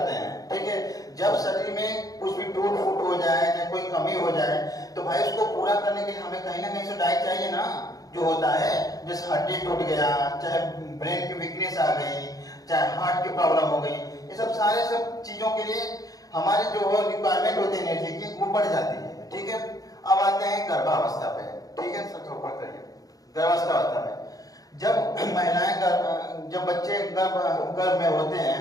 हैं। ठीक है, जब शरीर में कुछ भी टूट फूट हो जाए या कोई कमी हो जाए तो भाई उसको पूरा करने के लिए हमें कहीं ना कहीं से डाइट चाहिए ना, जो होता है। जैसे हड्डी टूट गया, चाहे ब्रेन की वीकनेस आ गई, चाहे हार्ट की प्रॉब्लम हो गई, ये सब सारे सब चीजों के लिए हमारे जो रिक्वायरमेंट होती है एनर्जी की वो बढ़ जाती है। ठीक है, अब आते हैं गर्भावस्था पे। ठीक है, सबसे ऊपर करिए। गर्भावस्था में जब महिलाएं जब बच्चे गर्भ में होते हैं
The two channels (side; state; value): right; late; 0.18 ms